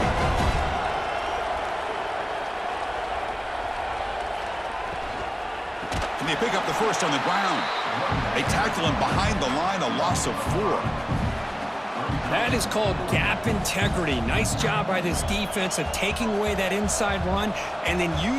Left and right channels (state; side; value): identical; both; correlation 1.00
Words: Can they pick up the first on the ground? They tackle him behind the line, a loss of 4. That is called gap integrity. Nice job by this defense of taking away that inside run and then